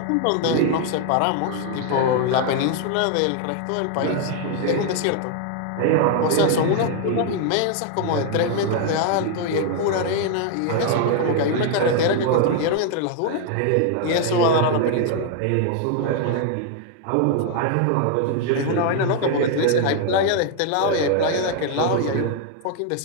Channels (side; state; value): both; different; correlation 0.00